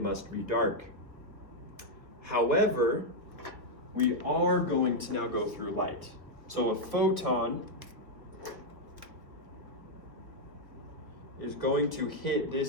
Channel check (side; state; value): left; late; 1.6 ms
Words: must be dark. However, we are going to now go through light. So a photon is going to hit